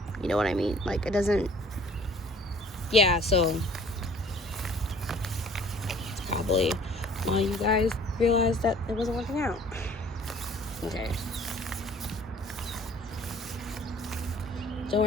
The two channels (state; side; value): normal; both; correlation 0.53